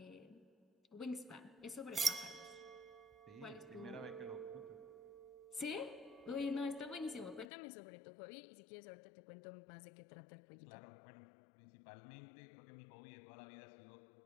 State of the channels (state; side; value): drops out; right; at 7.5 s